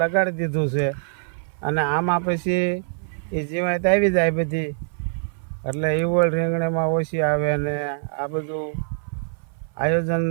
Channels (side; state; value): left; silent; 57 dB below the other